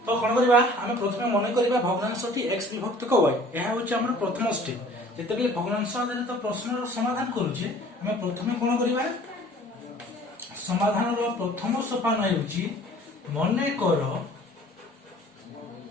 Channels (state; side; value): normal; both; correlation 0.50